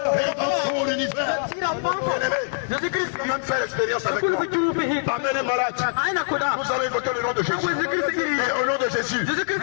et dans tout l'univers. Bien-aimé, même faire l'expérience avec moi. Amen, malade. Vous avez évoqué le nom de Jésus. Et au nom de Jésus,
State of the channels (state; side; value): silent; right; 62 dB below the other